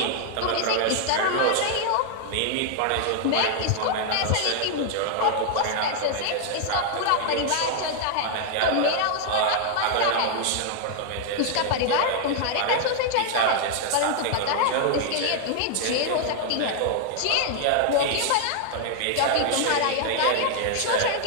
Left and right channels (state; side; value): different; both; correlation 0.00